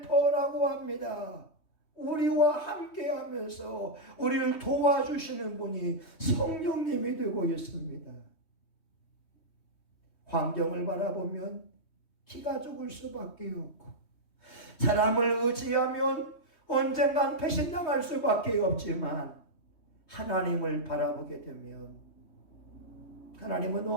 합니다. 우리와 함께 하면서 우리를 도와주시는 분이 성령님이 되고 있습니다. 환경을 바라보면 기가 죽을 수밖에 없고, 사람을 의지하면 언젠간 배신당할 수밖에 없지만, 하나님을 바라보게 되면 하나님은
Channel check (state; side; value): late; right; 3.2 ms